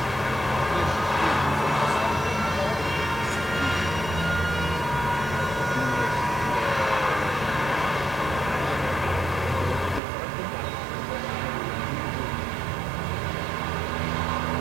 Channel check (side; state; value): left; drops out; at 10.0 s